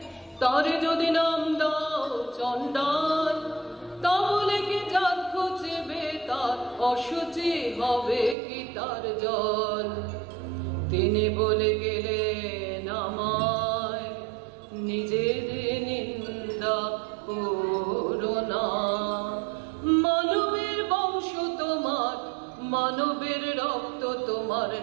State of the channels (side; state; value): left; drops out; at 8.3 s